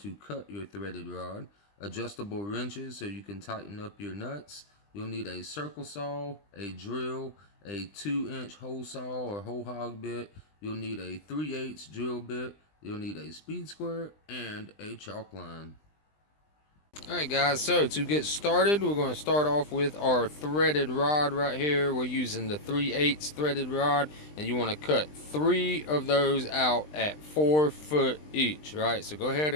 cut your threaded rod. Adjustable wrenches so you can tighten up your nuts. You'll need a circle saw, a drill, a 2-inch hole saw or hole hog bit. You'll need a 3/8 drill bit. You'll need a speed square and a chalk line. Alright guys, so to get started, we're going to start off with our threaded rod right here. We're using the 3/8 threaded rod, and you want to cut 3 of those out at 4 foot each, right? So go ahead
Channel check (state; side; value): late; right; 20 ms